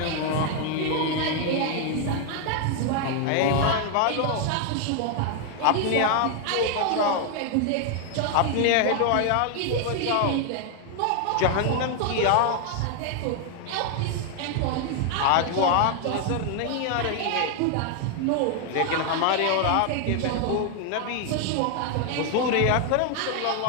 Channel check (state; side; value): different; both; correlation 0.00